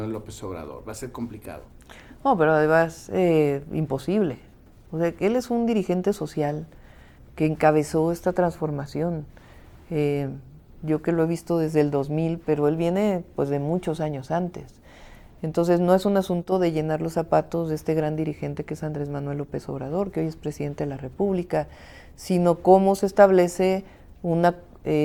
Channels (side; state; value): both; identical; correlation 1.00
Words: López Obrador? ¿Va a ser complicado? No, pero además imposible. O sea, él es un dirigente social que encabezó esta transformación. Yo que lo he visto desde el 2000, pero él viene pues de muchos años antes. Entonces no es un asunto de llenar los zapatos de este gran dirigente que es Andrés Manuel López Obrador, que hoy es presidente de la República, sino cómo se establece una